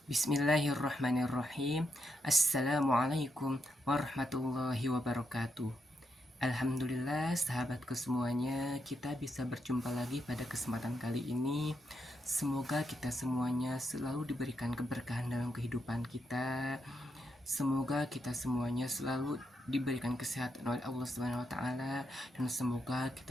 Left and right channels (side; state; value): both; normal; correlation 0.81